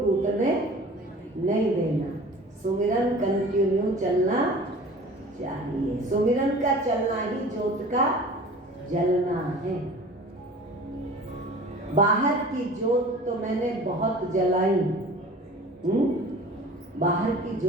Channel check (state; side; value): normal; both; correlation 0.42